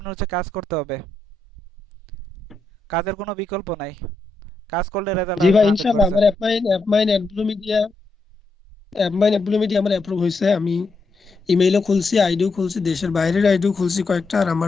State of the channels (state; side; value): quieter; right; 3.1 dB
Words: হচ্ছে কাজ করতে হবে, কাজের কোনো বিকল্প নাই, কাজ করলে রেজাল্ট জি আসবে ভাই ইনশাআল্লাহ, আমার 100%। অ্যাপমাইন অ্যাডব্লু মিডিয়া আমার অ্যাপ্রুভ হয়েছে। আমি ইমেইলও খুলছি, আইডিও খুলছি, দেশের বাইরের আইডিও খুলছি কয়েকটা, আর